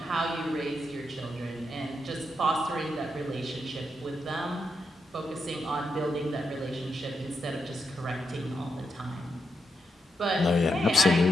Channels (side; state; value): both; normal; correlation 0.84